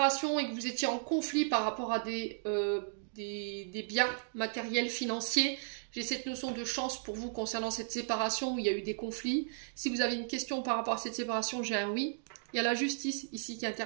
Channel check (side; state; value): left; silent; digital silence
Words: et que vous étiez en conflit par rapport à des biens matériels, financiers, j'ai cette notion de chance pour vous concernant cette séparation où il y a eu des conflits. Si vous avez une question par rapport à cette séparation, j'ai un oui. Il y a la justice ici qui